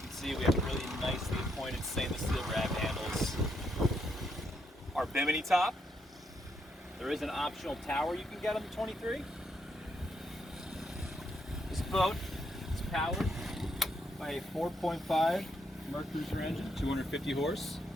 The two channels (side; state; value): both; normal; correlation 0.77